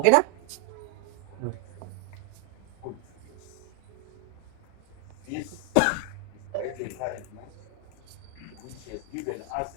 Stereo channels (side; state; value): both; different; correlation 0.00